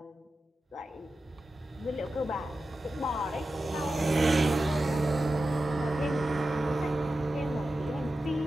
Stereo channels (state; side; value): normal; both; correlation 0.92